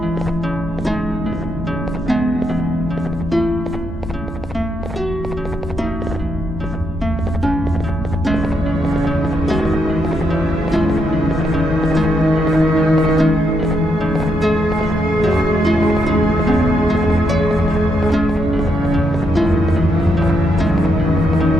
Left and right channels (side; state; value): both; normal; correlation 0.79